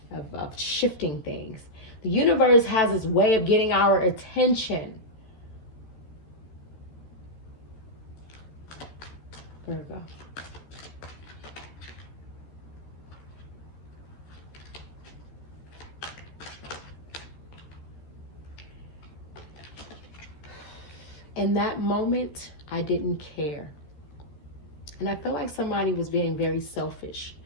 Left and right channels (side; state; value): right; late; 13 ms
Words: of shifting things. The universe has its way of getting our attention. There we go. In that moment, I didn't care. And I feel like somebody was being very selfish.